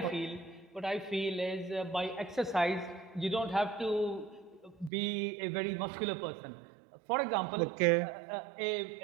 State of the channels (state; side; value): drops out; left; at 4.9 s